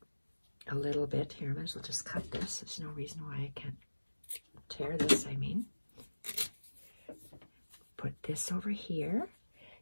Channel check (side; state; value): both; inverted; correlation -1.00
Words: a little bit here. I might as well just cut this. There's no reason why I can't tear this, I mean. Put this over here.